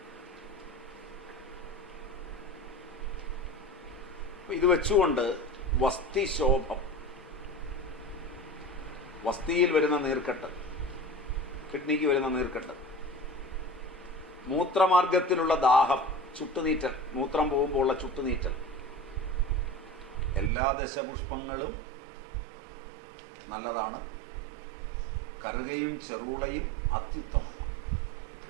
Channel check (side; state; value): left; drops out; at 20.5 s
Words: ഇത് വെച്ചുകൊണ്ട് വസ്തിശോഭം, വസ്തിയിൽ വരുന്ന നീർക്കെട്ട്, കിഡ്നിക്ക് വരുന്ന നീർക്കെട്ട്, മൂത്രമാർഗത്തിലുള്ള ദാഹം, ചുട്ടുനീറ്റൽ, മൂത്രം പോകുമ്പോൾ ഉള്ള ചുട്ടുനീറ്റൽ, എല്ലാ ദശപുഷ്പങ്ങളും നല്ലതാണ്. കറുകയും ചെറുളയും അത്യുത്തമമാണ്.